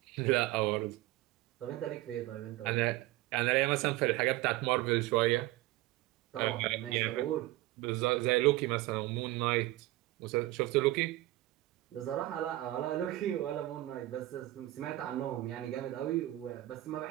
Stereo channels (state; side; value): quieter; left; 17.3 dB